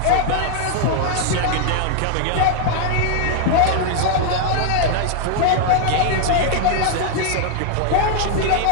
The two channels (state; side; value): different; both; correlation 0.00